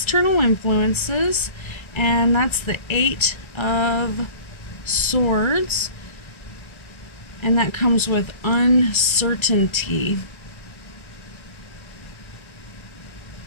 influences, and that's the Eight of Swords, and that comes with uncertainty.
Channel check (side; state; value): right; late; 1.3 ms